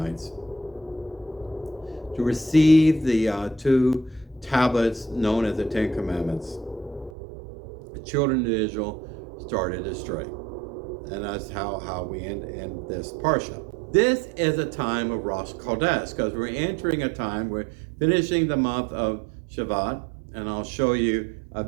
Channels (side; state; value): left; drops out; at 7.1 s